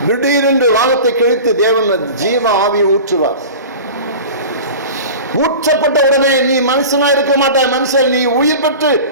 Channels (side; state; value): both; inverted; correlation -0.35